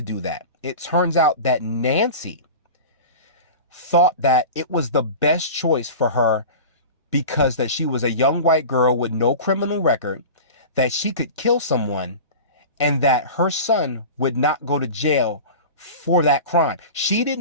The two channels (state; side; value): inverted; both; correlation -0.33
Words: do that. It turns out that Nancy thought that it was the best choice for her because that she was a young white girl with no criminal record, that she could kill someone, and that her son would not go to jail for that crime. She did